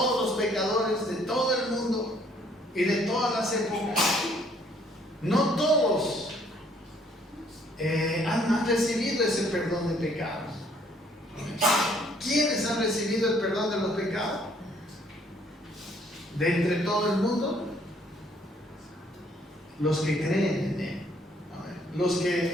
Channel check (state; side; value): normal; both; correlation 0.63